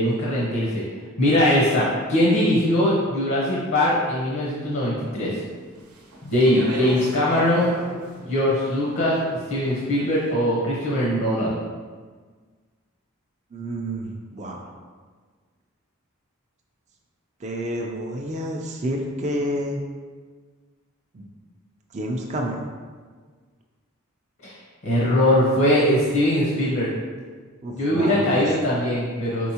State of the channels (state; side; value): normal; both; correlation 0.38